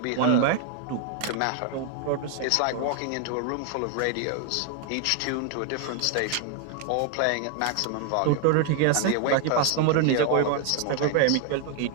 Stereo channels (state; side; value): different; both; correlation 0.00